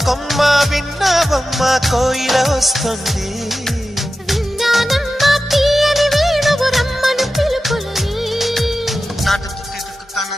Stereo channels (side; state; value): both; normal; correlation 0.93